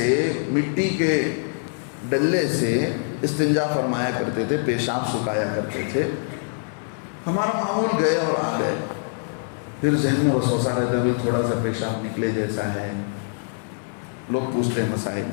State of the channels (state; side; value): silent; right; digital silence